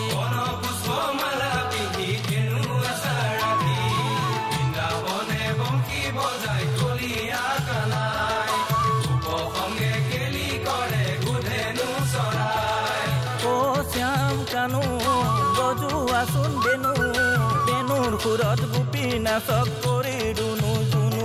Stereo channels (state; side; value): identical; both; correlation 1.00